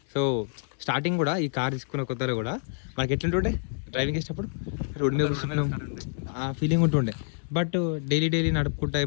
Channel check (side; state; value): right; silent; 60 dB below the other